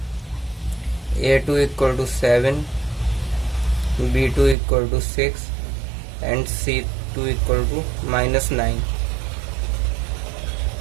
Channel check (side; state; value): left; drops out; at 4.5 s